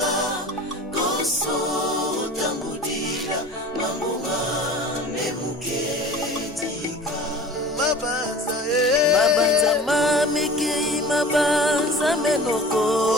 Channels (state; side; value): normal; both; correlation 0.41